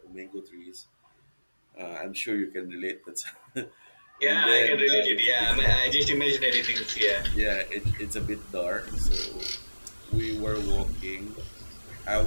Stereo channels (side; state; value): both; inverted; correlation -1.00